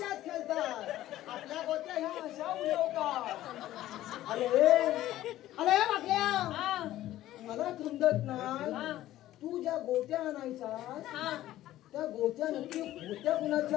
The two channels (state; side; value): quieter; right; 14.3 dB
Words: खेळतात. आपल्या गोट्या ह्या अशा उडवतात. अरे अरे वागल्या. हा मला समजत नाही. हा तू ज्या गोट्या आणायचा हा त्या गोट्या नक्की होत्या